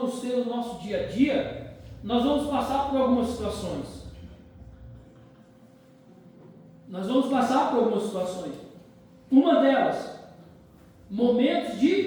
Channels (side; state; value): both; identical; correlation 1.00